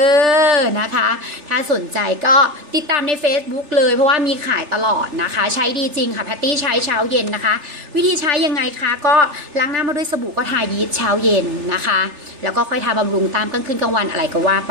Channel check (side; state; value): left; late; 3.4 ms